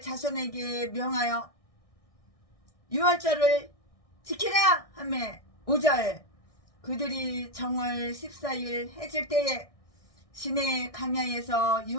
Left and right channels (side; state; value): right; late; 1.6 ms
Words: 자손에게 명하여 6월절을 지키라 하며 5절, 그들이 정월 14일 해질 때에 시내 광야에서